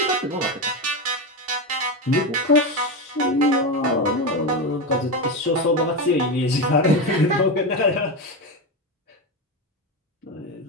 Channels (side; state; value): both; normal; correlation 0.15